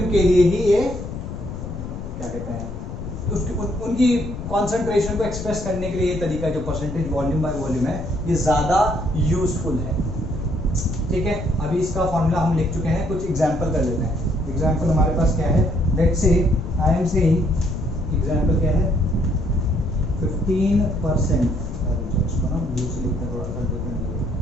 के लिए ही ये क्या कहते हैं, उनकी कॉन्सेंट्रेशन को एक्सप्रेस करने के लिए ये तरीका जो परसेंटेज वॉल्यूम बाय वॉल्यूम है, ये ज्यादा यूजफुल है, ठीक है। अभी इसका फॉर्मूला हम लिख चुके हैं, कुछ एग्जांपल कर लेते हैं। एग्जांपल हमारे पास क्या है, let's say I am saying example क्या है, 15%, इसको ना ब्लू से लिखते हैं, थोड़ा सा डिफरेंट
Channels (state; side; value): noise; left; rumble, 8 dB below the sound